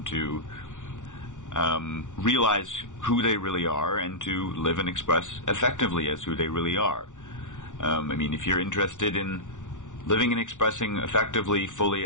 to realize who they really are and to live and express effectively as who they really are. I mean, if you're interested in living and expressing effectively, fully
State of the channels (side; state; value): right; late; 0.87 ms